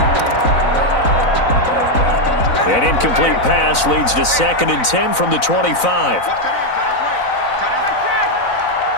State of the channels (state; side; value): late; right; 4.0 ms